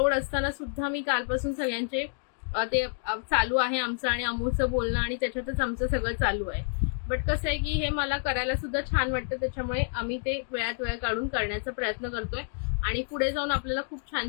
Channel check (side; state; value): right; silent; digital silence